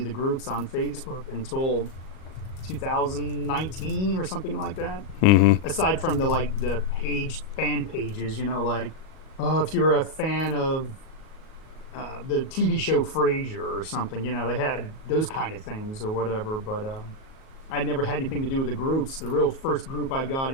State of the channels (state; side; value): late; right; 37 ms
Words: the groups on Facebook until 2019 or something like that. Aside from the fan pages, if you're a fan of the TV show Frasier or something, they had those kind of things or whatever. But I never had anything to do with the groups. The real first group I got